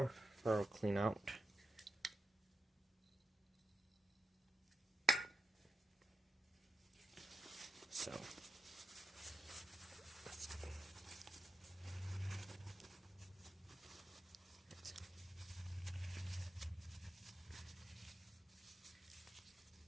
thorough clean out. So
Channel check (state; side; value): normal; both; correlation 0.84